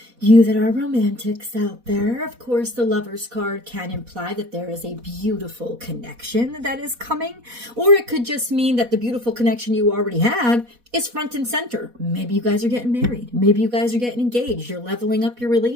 you that are romantics out there, of course, the Lover's card can imply that there is a beautiful connection that is coming, or it could just mean that the beautiful connection you already have is front and center. Maybe you guys are getting married. Maybe you guys are getting engaged. You're leveling up your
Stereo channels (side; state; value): left; late; 4.1 ms